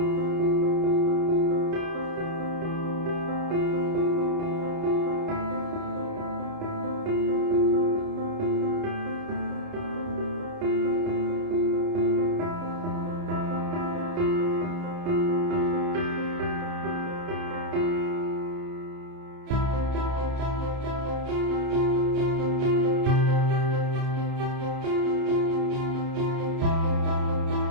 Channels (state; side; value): late; left; 29 ms